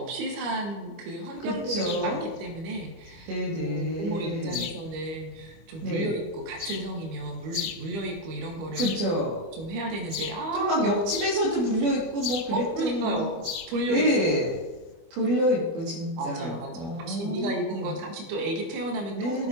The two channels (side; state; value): left; late; 24 ms